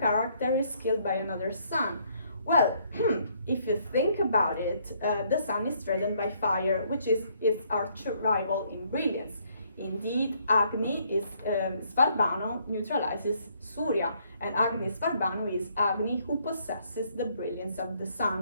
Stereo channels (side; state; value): both; inverted; correlation -0.68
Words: is killed by another sun? Well, if you think about it, the sun is threatened by fire, which is its arch rival in brilliance. Indeed, Agni is Svarbano neutralizes Surya, and Agni Svarbano is Agni who possesses the brilliance of the